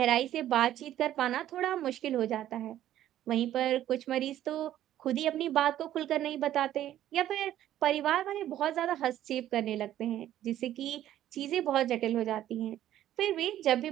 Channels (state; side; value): quieter; left; 12.4 dB